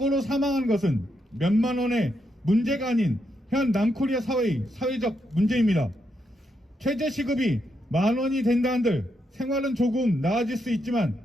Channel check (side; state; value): both; normal; correlation 0.81